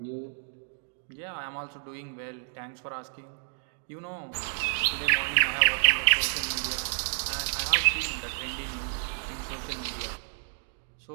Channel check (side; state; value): left; silent; digital silence